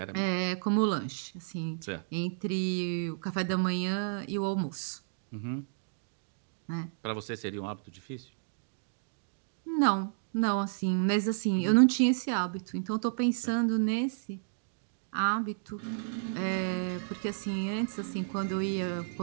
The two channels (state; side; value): silent; left; digital silence